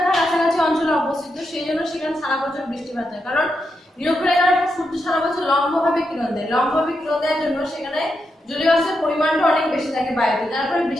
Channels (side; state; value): both; normal; correlation 0.84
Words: কাছাকাছি অঞ্চলে অবস্থিত, সেই জন্য সেখানে সারা বছর বৃষ্টিপাত হয়। কারণ নিরক্ষরেখার সূর্য সারা বছর লম্বভাবে কিরণ দেয়। লম্বভাবে কিরণ দেওয়ার জন্য সেখানে জলীয় বাষ্পের পরিমাণটা অনেক বেশি থাকে বায়ুতে, তারপরে